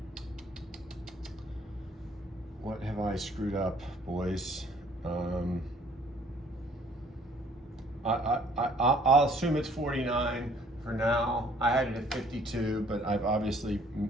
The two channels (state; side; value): normal; both; correlation 0.59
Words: have I screwed up, boys? I'll assume it's 49 for now. I had it at 52, but